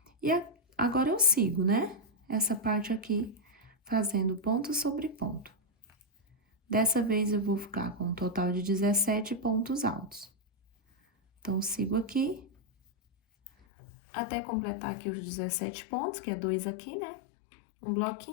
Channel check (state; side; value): drops out; right; at 13.5 s